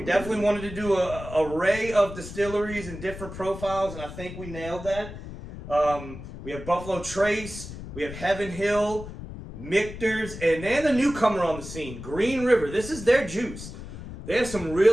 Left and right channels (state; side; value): noise; left; rumble, 11 dB below the sound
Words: definitely wanted to do an array of distilleries and different profiles, and I think we nailed that. We have Buffalo Trace, we have Heaven Hill, Michter's, and then the newcomer on the scene, Green River. This is their juice. They have some